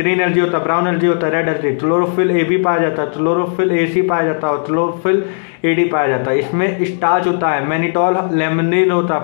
एल्गी होता है, ब्राउन एल्गी होता है, रेड एल्गी। क्लोरोफिल ए भी पाया जाता है, क्लोरोफिल ए सी पाया जाता है, और क्लोरोफिल ए डी पाया जाता है। इसमें स्टार्च होता है, मैनिटॉल लेमनिन होता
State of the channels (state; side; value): silent; right; digital silence